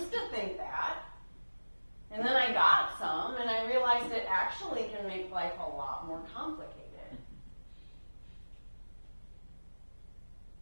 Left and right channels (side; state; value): both; inverted; correlation -1.00